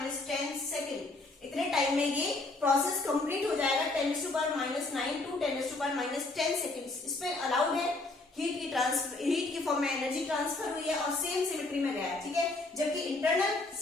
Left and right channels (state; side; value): quieter; right; 3.2 dB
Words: सेकेंड। इतने टाइम में ये प्रोसेस कंप्लीट हो जाएगा, 10⁻⁹ to 10⁻⁻10 सेकेंड्स। इसमें अलाउड है, हीट की फॉर्म में एनर्जी ट्रांसफर हुई है और सेम सिमेट्री में गया है, ठीक है। जबकि इंटरनल